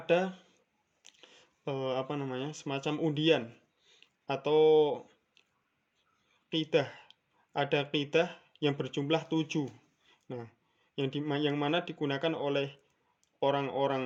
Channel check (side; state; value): both; identical; correlation 1.00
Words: semacam undian atau qidah. Ada qidah yang berjumlah 7. Nah, yang mana digunakan oleh